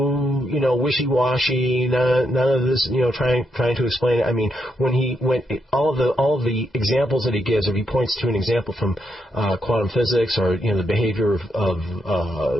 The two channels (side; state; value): both; normal; correlation 0.80